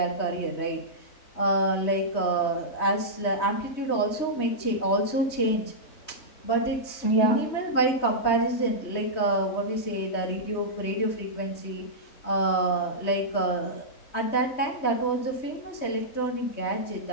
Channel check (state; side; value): late; right; 3.2 ms